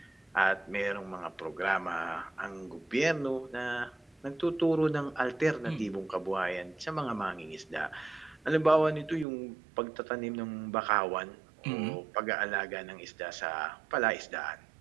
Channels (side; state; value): left; drops out; at 9.2 s